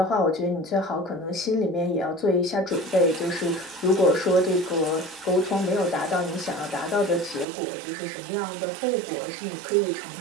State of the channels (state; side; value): drops out; left; at 7.5 s